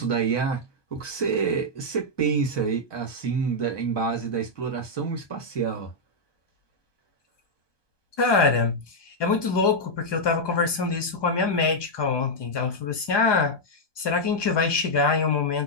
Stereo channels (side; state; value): right; late; 1.2 ms